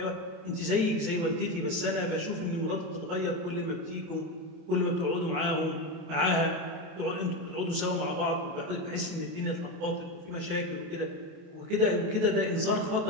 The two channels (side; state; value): left; late; 28 ms